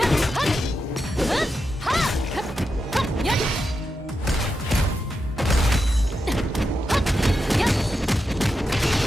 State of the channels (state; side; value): normal; both; correlation 0.87